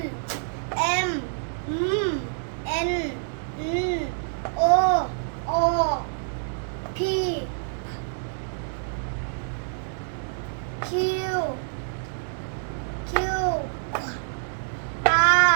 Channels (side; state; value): left; silent; digital silence